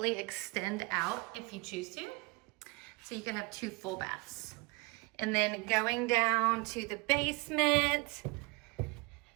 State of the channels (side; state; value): left; quieter; 27.0 dB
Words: extend out if you choose to. So you could have 2 full baths. And then going down to the basement,